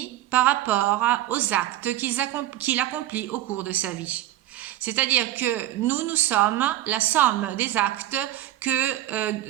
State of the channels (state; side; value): quieter; left; 14.2 dB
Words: par rapport aux actes qu'il accomplit au cours de sa vie. C'est-à-dire que nous sommes la somme des actes